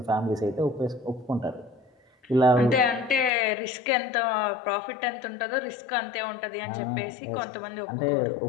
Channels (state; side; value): drops out; right; at 3.3 s